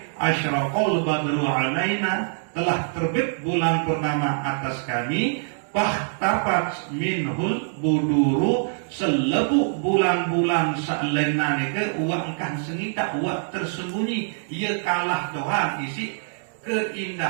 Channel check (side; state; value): left; silent; digital silence